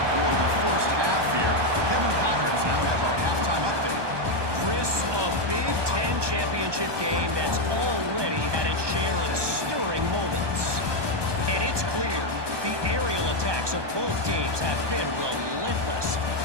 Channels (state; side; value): late; left; 1.2 ms